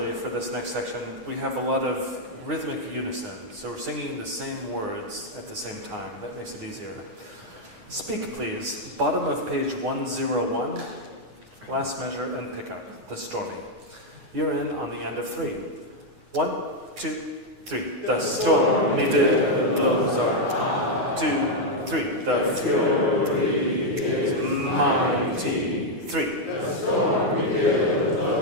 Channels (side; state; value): left; late; 9.5 ms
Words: for this next section, we have a lot of rhythmic unison, so we're singing the same words at the same time. That makes it easier. Speak, please. Bottom of page 101, last measure and pickup, the stormy. You're in on the end of 3. 1, 2, 3. The stormy billows are high. 2, 3. The fury is mighty. 3. The stormy